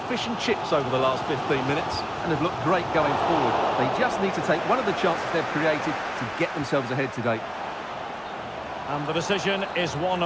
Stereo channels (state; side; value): identical; both; correlation 1.00